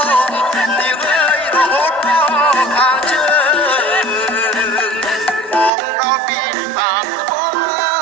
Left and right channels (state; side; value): drops out; left; at 5.7 s